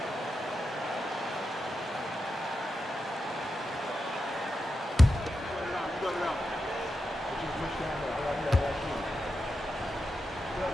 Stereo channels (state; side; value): normal; both; correlation 0.88